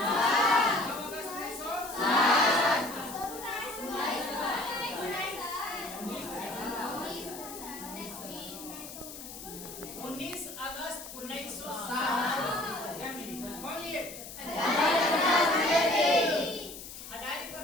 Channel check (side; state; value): left; noise; hiss, 12 dB below the sound